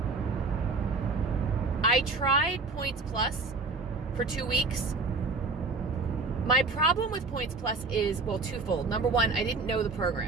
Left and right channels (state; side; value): quieter; left; 3.9 dB